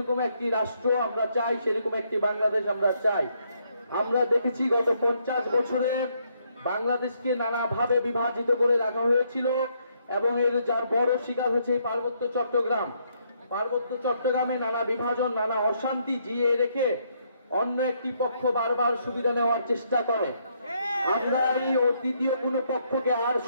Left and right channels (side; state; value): both; inverted; correlation -0.73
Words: একটি রাষ্ট্র আমরা চাই, সেরকম একটি বাংলাদেশ আমরা চাই। আমরা দেখেছি গত 50 বছরে বাংলাদেশকে নানাভাবে বিভাজিত করে রাখা হয়েছিল এবং এর যার বড় শিকার হচ্ছে এই পার্বত্য চট্টগ্রাম। পার্বত্য চট্টগ্রামে নানা বিভাজন, নানা অশান্তি জিয়ে রেখে অন্য একটি পক্ষ বারবার সুবিধা নেওয়ার চেষ্টা করে। আমরা এই তৃতীয় কোনো পক্ষকে আর